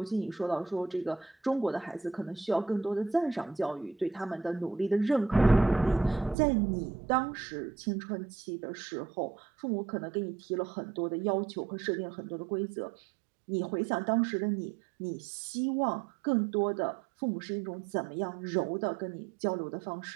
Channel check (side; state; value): left; drops out; at 6.4 s